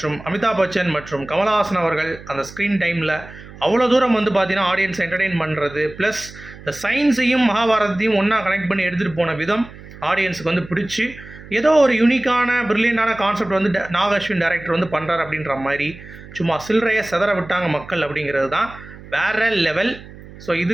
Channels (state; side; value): noise; right; hum, 18 dB below the sound